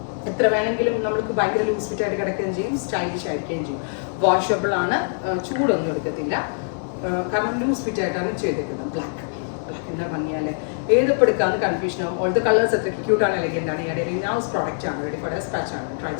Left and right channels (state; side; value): silent; right; digital silence